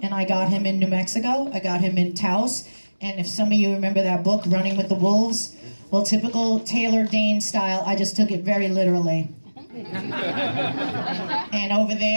and I got him in New Mexico. I got him in Taos, and if some of you remember that book, Running with the Wolves, well, typical Taylor Dayne style, I just took it very literally. And over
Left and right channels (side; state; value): both; inverted; correlation -1.00